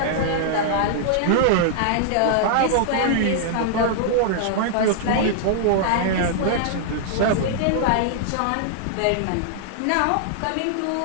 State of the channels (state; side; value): different; both; correlation -0.01